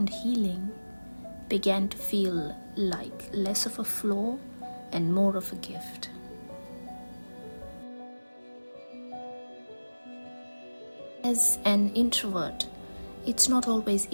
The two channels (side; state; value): both; inverted; correlation -1.00